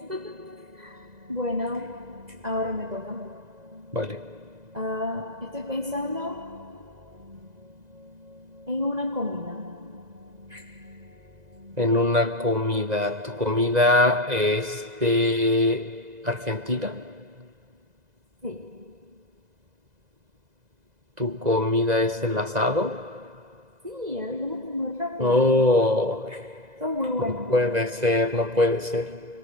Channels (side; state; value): left; late; 2.0 ms